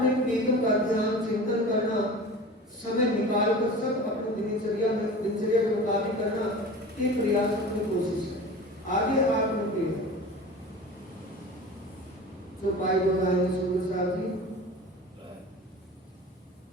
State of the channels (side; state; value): both; normal; correlation 0.36